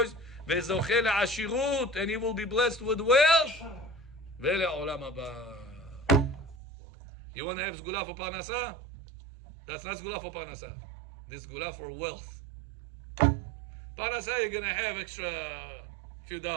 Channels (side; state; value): left; drops out; at 6.6 s